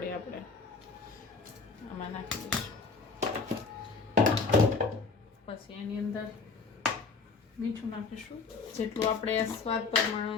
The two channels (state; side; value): quieter; right; 4.4 dB